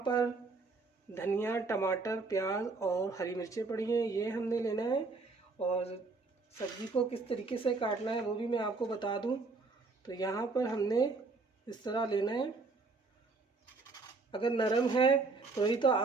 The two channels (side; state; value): left; quieter; 3.9 dB